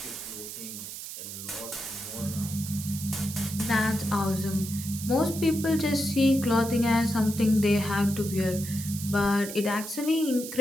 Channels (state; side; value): noise; right; hiss, 9 dB below the sound